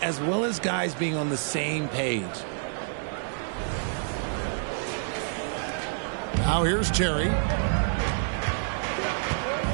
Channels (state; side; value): silent; left; digital silence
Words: well as guys being on the same page. Now here's Terry.